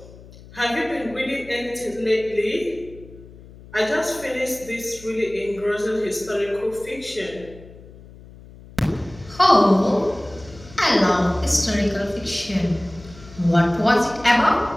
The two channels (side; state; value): left; noise; hum, 20 dB below the sound